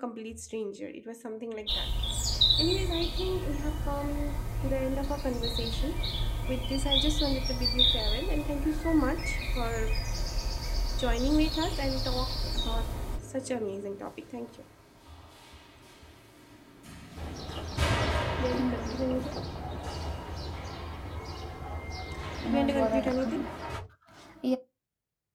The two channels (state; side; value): identical; both; correlation 1.00